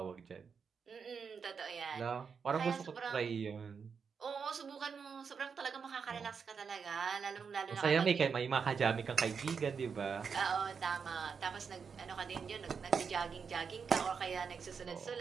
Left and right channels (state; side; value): quieter; left; 6.0 dB